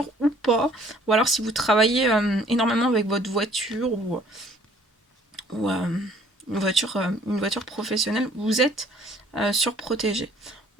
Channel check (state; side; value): normal; both; correlation 0.57